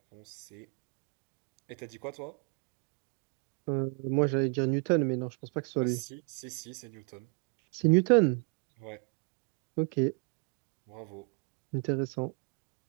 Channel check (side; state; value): left; quieter; 34.4 dB